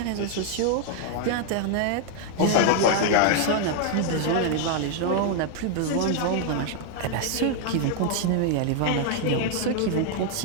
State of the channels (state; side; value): different; both; correlation 0.00